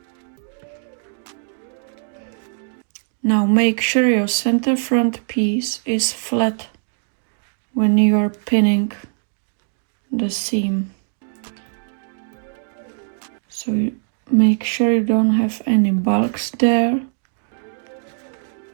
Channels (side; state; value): left; silent; digital silence